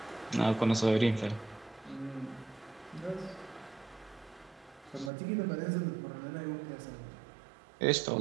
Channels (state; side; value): drops out; left; at 5.1 s